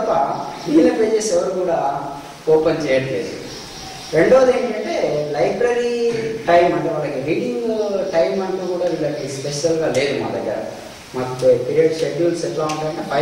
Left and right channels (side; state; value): both; identical; correlation 1.00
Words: మిగిలిన పేజెస్ ఎవరు కూడా ఓపెన్ చేయట్లేదు. రెండోది ఏంటంటే లైబ్రరీ టైం, అంటే వాళ్ళకి రీడింగ్ టైం అంటూ కూడా వీళ్ళకి స్పెషల్గా లేదు మా దగ్గర. మాకు పీరియడ్ షెడ్యూల్స్ ఎట్లా ఉంటాయంటే